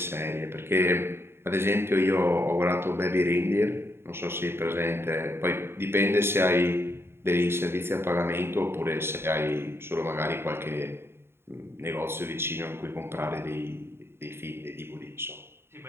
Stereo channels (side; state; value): left; late; 0.12 ms